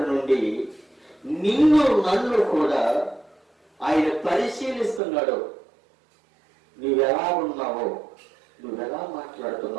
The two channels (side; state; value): left; drops out; at 5.0 s